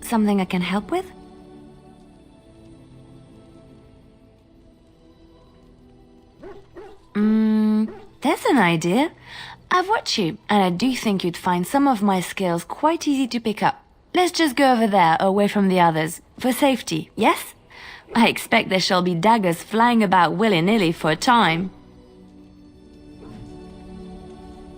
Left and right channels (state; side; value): identical; both; correlation 1.00